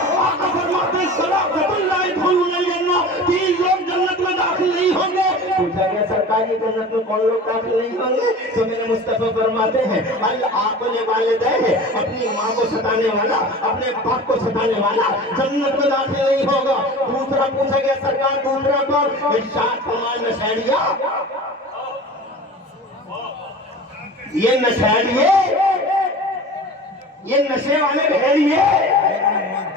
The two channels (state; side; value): normal; both; correlation 0.37